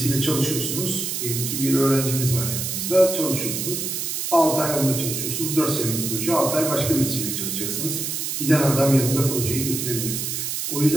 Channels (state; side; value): noise; right; hiss, 3 dB below the sound